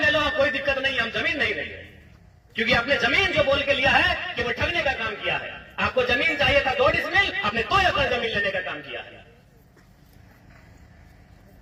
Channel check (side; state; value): both; identical; correlation 1.00